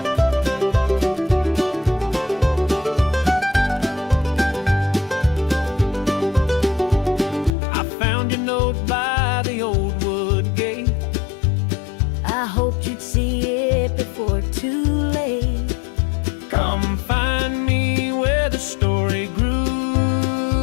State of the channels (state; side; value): drops out; right; at 7.5 s